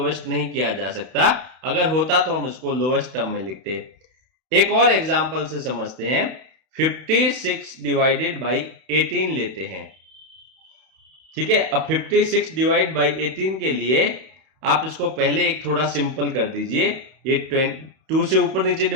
नहीं किया जा सकता। अगर होता तो हम इसको लोएस्ट टर्म में लिखते। एक और एग्जांपल से समझते हैं, 56 डिवाइडेड बाई 18 लेते हैं। ठीक है, अब 56 डिवाइड बाई 18 के लिए आप इसको पहले एक थोड़ा सिंपल कर दीजिए, ये 2 से ऊपर नीचे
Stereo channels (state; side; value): late; left; 31 ms